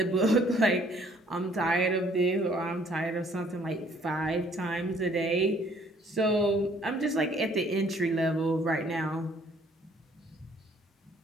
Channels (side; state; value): both; normal; correlation 0.61